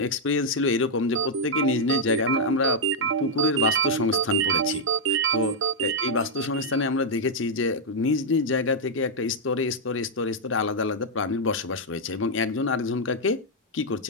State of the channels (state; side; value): normal; both; correlation -0.02